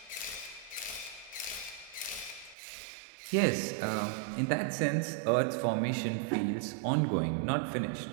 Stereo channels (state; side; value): drops out; left; at 2.6 s